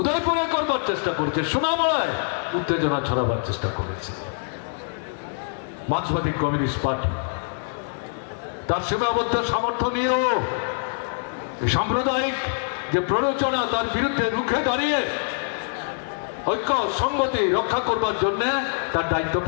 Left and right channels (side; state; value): right; silent; 62 dB below the other